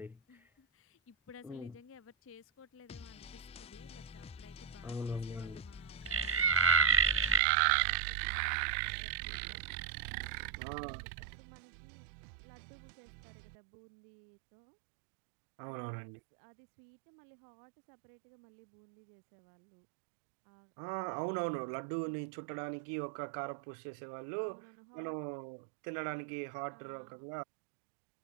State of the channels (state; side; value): drops out; left; at 7.4 s